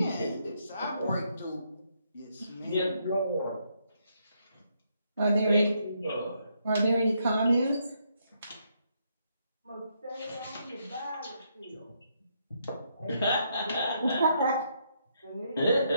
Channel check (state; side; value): inverted; both; correlation -0.76